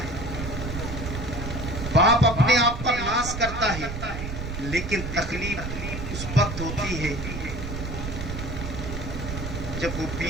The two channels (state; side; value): noise; right; rumble, 6 dB below the sound